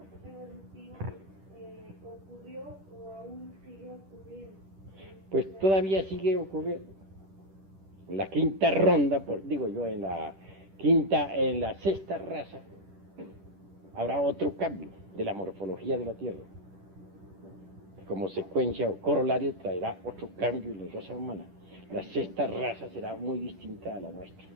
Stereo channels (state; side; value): late; left; 10 ms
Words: evolutivo ocurrió o aún sigue ocurriendo? Pues todavía sigue ocurriendo. En la quinta ronda, en la sexta raza, habrá otro cambio de la morfología de la Tierra. Como secuencia o corolario traerá otro cambio en la raza humana. La sexta raza será muy distinta a la nuestra.